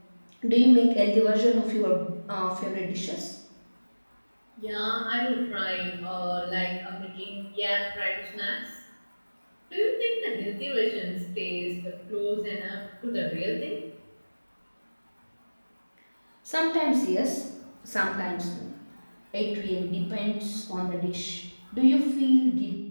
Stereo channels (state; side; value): inverted; both; correlation -1.00